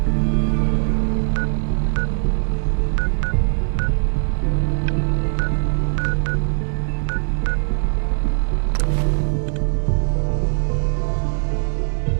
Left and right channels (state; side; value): silent; left; digital silence